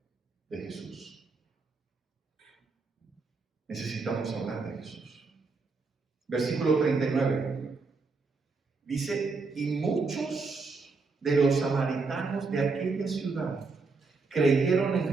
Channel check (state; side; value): quieter; left; 4.2 dB